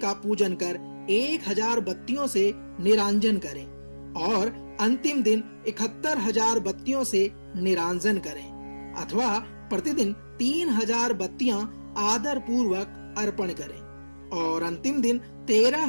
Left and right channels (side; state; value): both; inverted; correlation -1.00